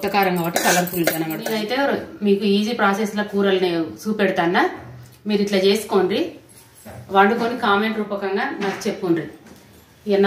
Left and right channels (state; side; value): identical; both; correlation 1.00